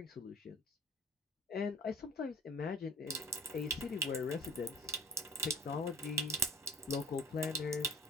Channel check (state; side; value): normal; both; correlation 0.46